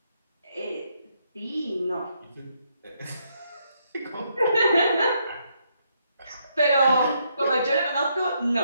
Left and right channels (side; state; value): both; inverted; correlation -0.75